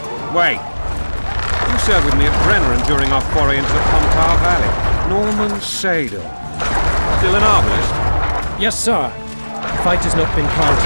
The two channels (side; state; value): both; inverted; correlation -1.00